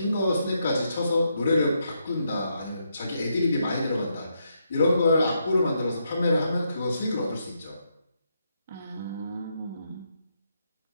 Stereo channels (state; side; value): inverted; both; correlation -0.79